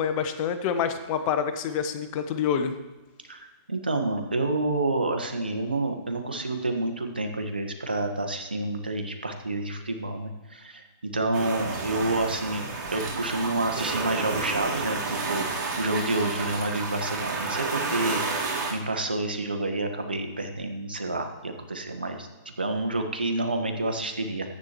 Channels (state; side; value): inverted; both; correlation -0.49